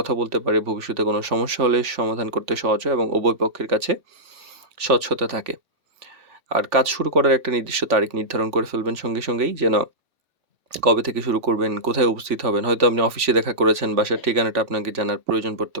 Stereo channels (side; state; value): left; late; 3.4 ms